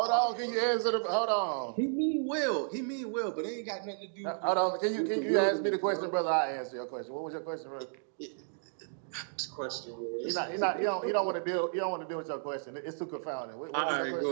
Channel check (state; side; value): silent; left; digital silence